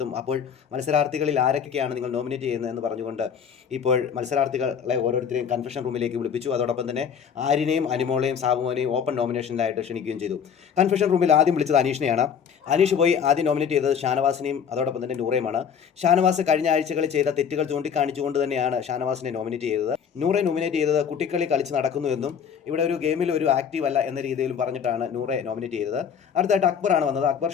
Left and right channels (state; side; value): quieter; right; 7.5 dB